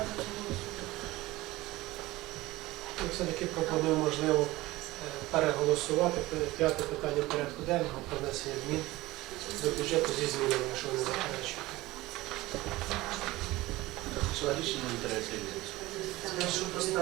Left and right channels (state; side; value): quieter; left; 18.9 dB